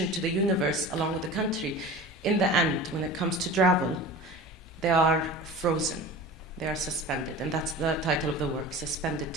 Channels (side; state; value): both; normal; correlation 0.36